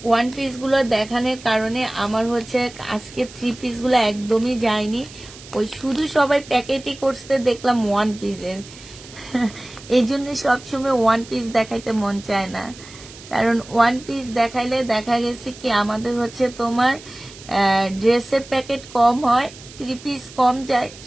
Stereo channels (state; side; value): noise; right; hiss, 18 dB below the sound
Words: 1 পিসগুলো দেখানোর কারণে আমার হচ্ছে আজকে 3 পিসগুলো একদমই যায়নি। ওই শুধু সবাই প্যাকেটই করছে, দেখলাম 1 পিসের। এই জন্য সবসময় 1 পিস দেখাইতে মন চায় না, কারণ 1 পিস দেখাইলে দেখা গেছে কি আমাদের হচ্ছে তোমার ড্রেসের প্যাকেট কম হয়, 3 পিস কম যায়।